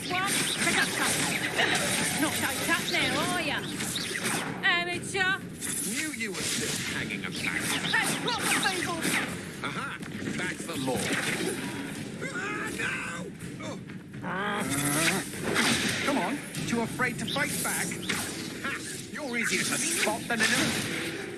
one! Pick up something! Not so tough now, are ya? Amateur! Knew you were still hanging about. That's proper people! Aha! Back for more. Come on, too afraid to fight back? Ha! You're easier to spot than an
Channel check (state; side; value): identical; both; correlation 1.00